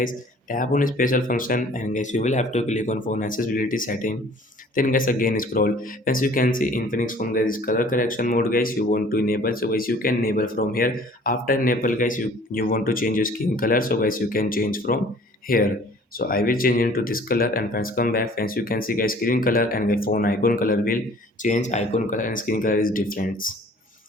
Tap on special function and guys you will have to click on phone accessibility setting. Then guys again scroll. As you can see Infinix phone guys color correction mode guys you want to enable. So guys you can enable from here. After enable guys you want to change your skin color. So guys you can change from here. So I will change into this color and friends come back. Friends you can see guys screen color and the phone icon color will change. Icon color and screen color is different.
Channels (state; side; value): normal; both; correlation 0.52